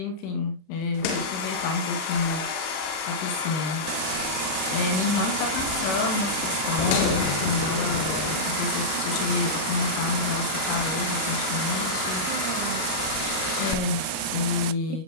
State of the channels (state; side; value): late; right; 32 ms